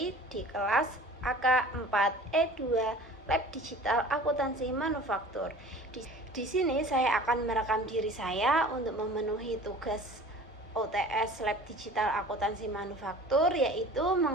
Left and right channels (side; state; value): both; normal; correlation 0.43